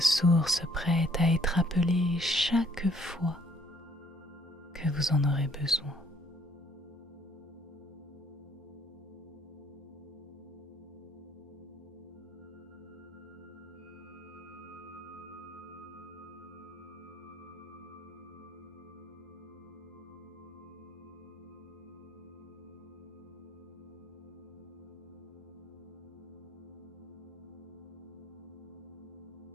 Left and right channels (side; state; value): both; normal; correlation 0.64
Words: prête à être appelée chaque fois que vous en aurez besoin.